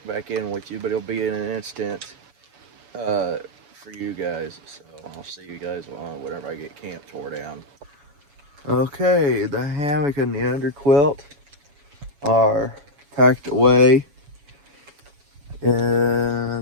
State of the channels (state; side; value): late; left; 7.1 ms